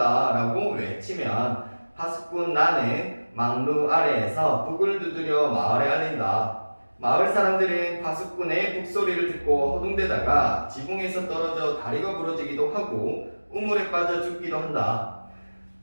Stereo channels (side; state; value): both; inverted; correlation -1.00